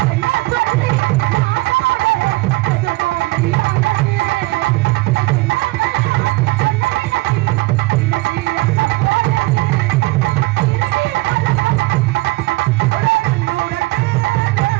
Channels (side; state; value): left; quieter; 21.3 dB